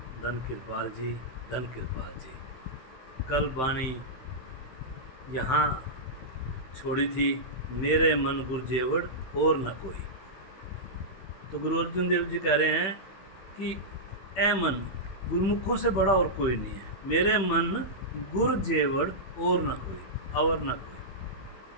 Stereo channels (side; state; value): right; late; 15 ms